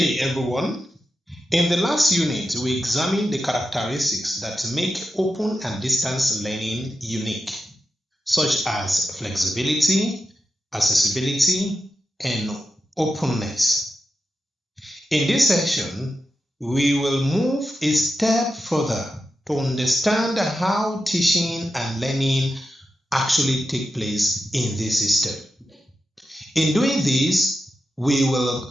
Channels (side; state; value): both; normal; correlation 0.89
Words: everyone. In the last unit, we examined the characteristics that make open and distance learning unique, such as flexibility, accessibility, and openness. In this section, we will move a step further to understand how teaching and learning actually take place in this system. In doing this, we